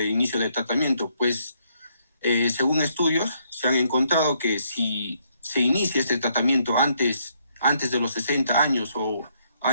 inicio de tratamiento, pues según estudios se han encontrado que si se inicia este tratamiento antes de los 60 años o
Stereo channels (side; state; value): both; inverted; correlation -0.72